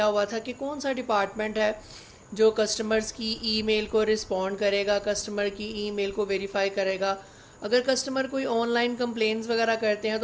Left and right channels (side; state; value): both; identical; correlation 1.00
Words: हुआ था कि कौन सा डिपार्टमेंट है जो कस्टमर्स की ईमेल को रिस्पॉन्ड करेगा, कस्टमर की ईमेल को वेरीफाई करेगा। अगर कस्टमर कोई ऑनलाइन कंप्लेंट्स वगैरह करते हैं